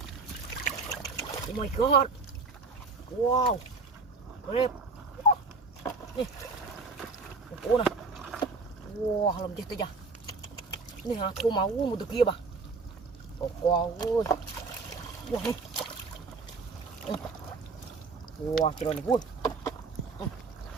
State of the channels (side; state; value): left; quieter; 4.1 dB